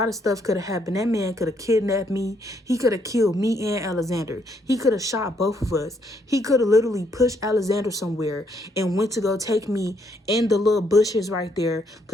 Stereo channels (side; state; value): both; normal; correlation 0.72